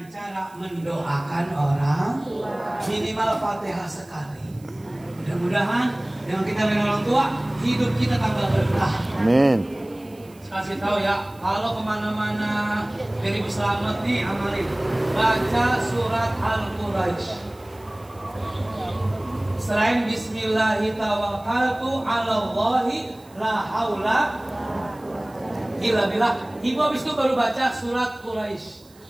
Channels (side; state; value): right; noise; hiss, 28 dB below the sound